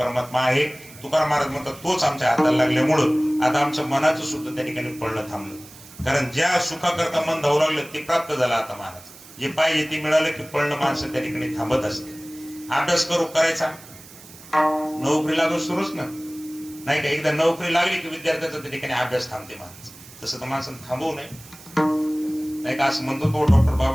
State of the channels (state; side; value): noise; right; hiss, 19 dB below the sound